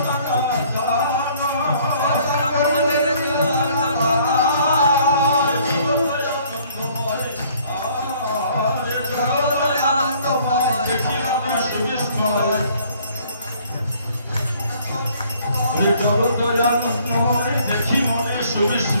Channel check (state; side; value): inverted; both; correlation -0.59